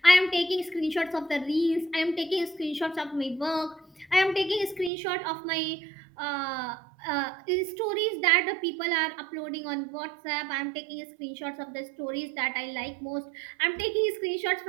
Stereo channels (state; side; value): drops out; left; at 4.9 s